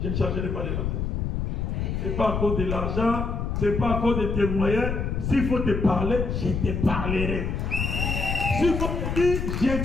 ne changerai pas les langages. Ce n'est pas à cause de l'argent, ce n'est pas à cause de tes moyens. S'il faut te parler, je te parlerai. S'il faut te dire,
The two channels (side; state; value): left; noise; rumble, 2 dB below the sound